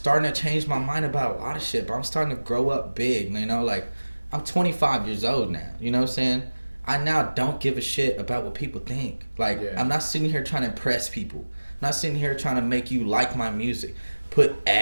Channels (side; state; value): both; inverted; correlation -1.00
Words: to change my mind about a lot of shit. But I'm starting to grow up big. You know, like, I'm 25 years old now. You know what I'm saying? I now don't give a shit about what people think. Like, I'm not sitting here trying to impress people. I'm not sitting here trying to make you like my music. Put